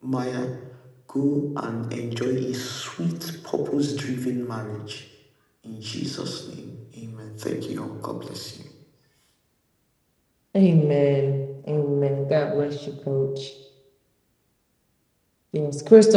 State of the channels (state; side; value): identical; both; correlation 1.00